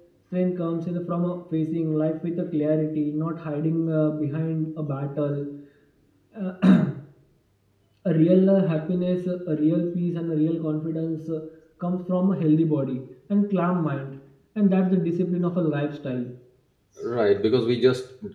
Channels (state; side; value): identical; both; correlation 1.00